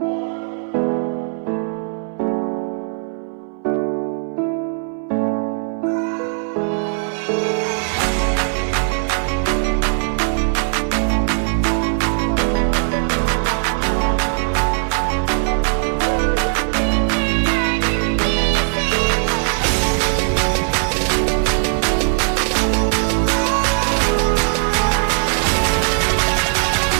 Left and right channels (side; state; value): left; silent; 63 dB below the other